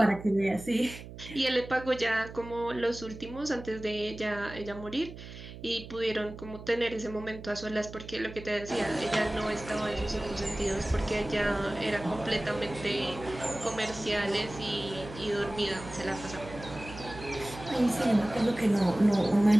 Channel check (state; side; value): noise; right; hum, 13 dB below the sound